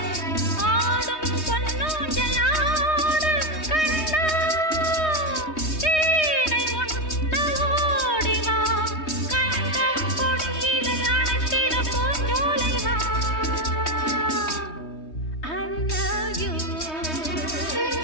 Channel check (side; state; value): right; late; 3.2 ms